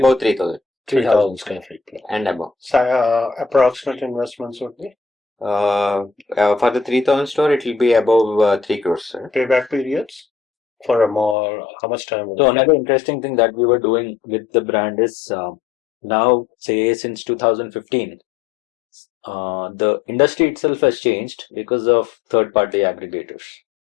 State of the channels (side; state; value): right; drops out; at 11.4 s